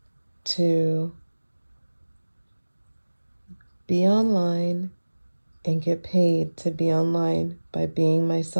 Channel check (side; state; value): both; inverted; correlation -1.00